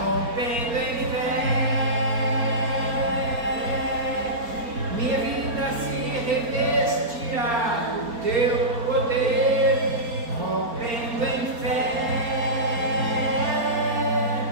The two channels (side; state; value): left; late; 4.3 ms